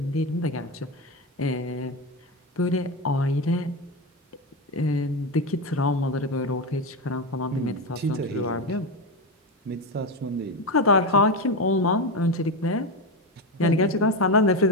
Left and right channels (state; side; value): normal; both; correlation 0.14